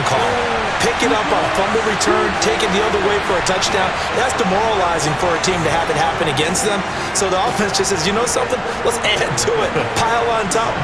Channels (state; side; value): identical; both; correlation 1.00